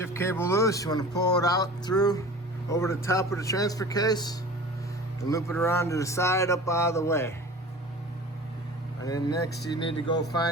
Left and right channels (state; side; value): normal; both; correlation 0.39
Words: cable loose, you want to pull it out through over the top of the transfer case and loop it around to the side up out of the way. And then next you need to go